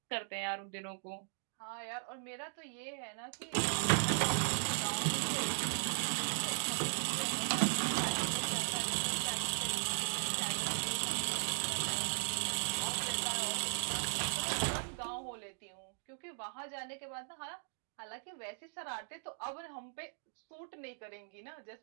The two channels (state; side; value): silent; left; digital silence